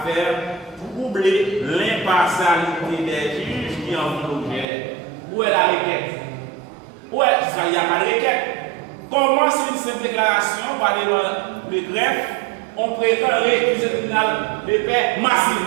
faire troubler l'impartialité des juges qui en font l'objet. Où est la requête? Où est? Il n'y a pas de requête. Comment c'est une simple déclaration par le greffe, on prétend récuser le tribunal de paix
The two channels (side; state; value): left; drops out; at 4.7 s